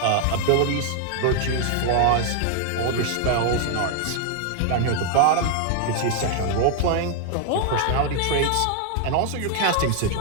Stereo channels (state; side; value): different; both; correlation 0.00